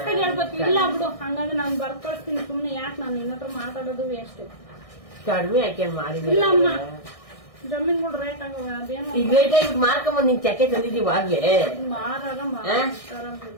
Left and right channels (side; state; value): right; late; 1.6 ms